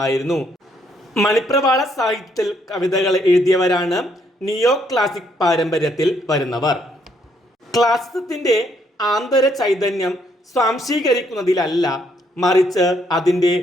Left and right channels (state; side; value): normal; both; correlation 0.71